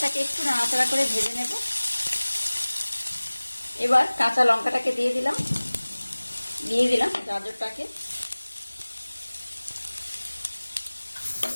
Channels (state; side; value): inverted; both; correlation -1.00